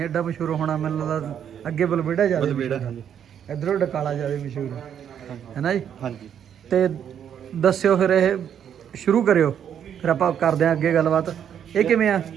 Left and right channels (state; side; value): quieter; left; 8.9 dB